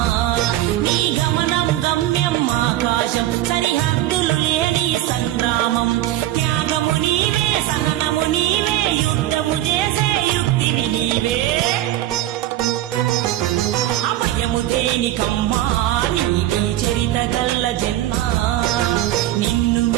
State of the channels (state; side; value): quieter; left; 14.1 dB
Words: నీ గమనం గమ్యం ఆకాశం సరిహద్దులు లేని సంగ్రామం త్యాగము నీవే సహనము నీవే యుద్ధము చేసే యుక్తివి నీవే ఆ భయము దేనికమ్మా నీదే చరిత గల్ల జన్మ నిన్ను